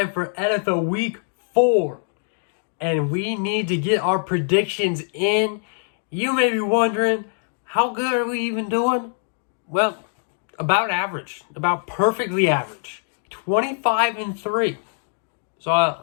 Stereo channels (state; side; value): silent; right; digital silence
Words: for NFL Week 4. And we need to get our predictions in. You may be wondering, how good are we even doing? Well, about average. About perfectly average. 25-3.